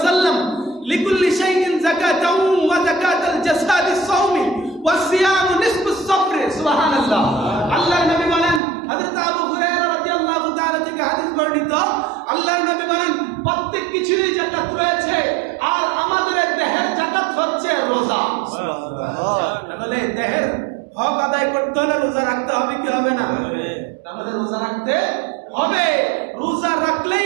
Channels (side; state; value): left; drops out; at 8.6 s